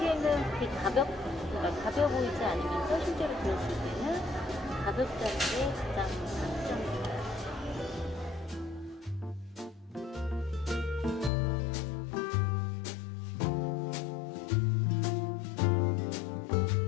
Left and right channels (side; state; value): right; drops out; at 11.3 s